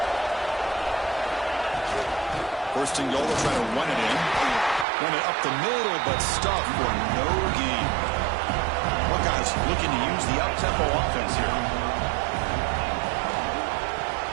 First and goal, they'll try to run it in. Run it up the middle, but stuffed for no gain. Buckeyes looking to use the up-tempo offense here.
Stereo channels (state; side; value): drops out; left; at 4.9 s